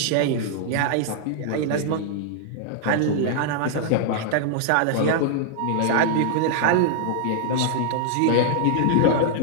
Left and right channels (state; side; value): different; both; correlation -0.01